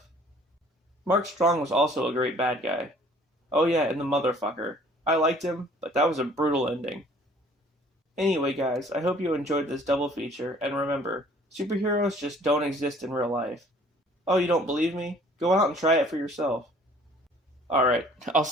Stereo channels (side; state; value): both; normal; correlation 0.55